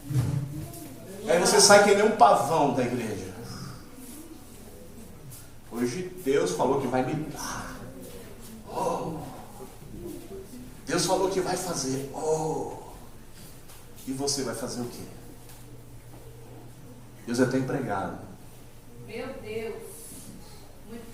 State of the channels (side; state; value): both; identical; correlation 1.00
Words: Aí você sai que nem um pavão da igreja. Hoje Deus falou que vai me dar. Oh. Deus falou que vai fazer. Oh. E você vai fazer o quê? Deus é até empregado. Meu Deus.